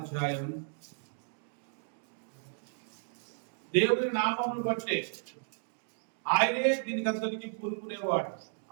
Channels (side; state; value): left; silent; digital silence